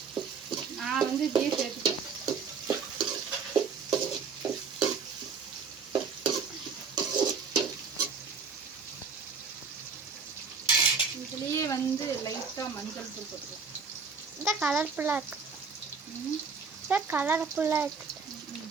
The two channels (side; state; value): left; quieter; 5.4 dB